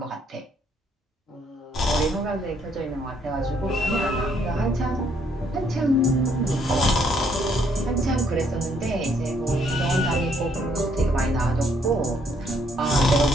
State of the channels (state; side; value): normal; both; correlation 0.68